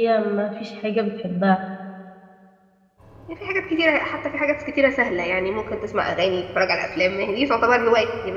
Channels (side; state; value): both; identical; correlation 1.00